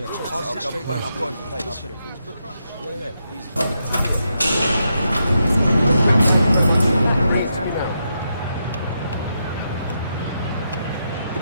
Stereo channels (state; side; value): inverted; both; correlation -0.83